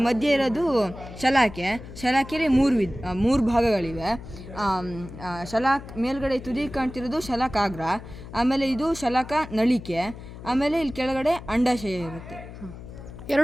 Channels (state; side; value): noise; left; hum, 14 dB below the sound